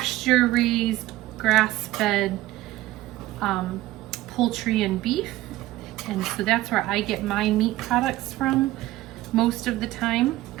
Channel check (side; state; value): left; quieter; 16.7 dB